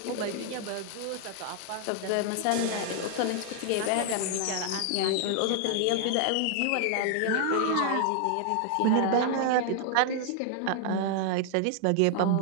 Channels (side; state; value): both; different; correlation 0.00